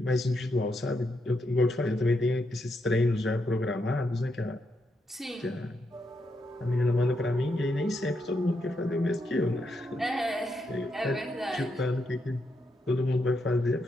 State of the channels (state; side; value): normal; both; correlation 0.81